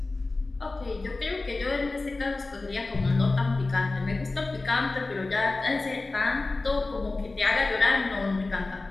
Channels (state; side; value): quieter; right; 3.3 dB